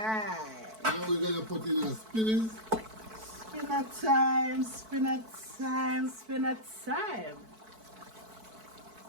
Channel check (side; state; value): left; late; 4.6 ms